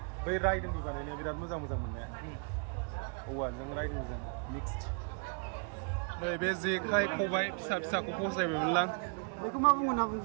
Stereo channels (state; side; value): quieter; left; 38.0 dB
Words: बै रायदोंनि बानायनाया बिराद मोजां मोजां मोननाया औवाजों रायदोंजों मिक्सड नै बे जेखाइ खबाइ फिसा फिसाखौ फसायबायमोनलां बेखौ मा बुङो ना